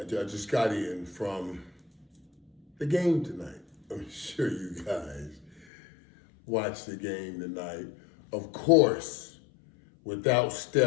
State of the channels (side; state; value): right; drops out; at 5.7 s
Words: got in from the game tonight. I'm sure you guys watched the game tonight. Of course, without